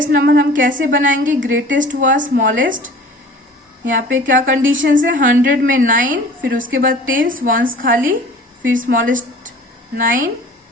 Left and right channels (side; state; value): both; normal; correlation 0.45